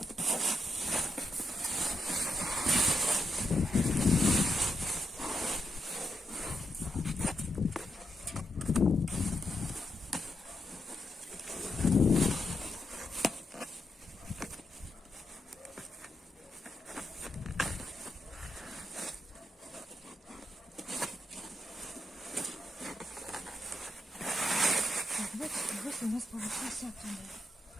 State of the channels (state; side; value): normal; both; correlation 0.83